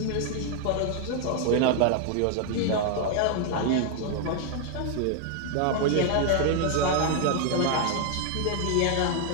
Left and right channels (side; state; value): both; different; correlation 0.00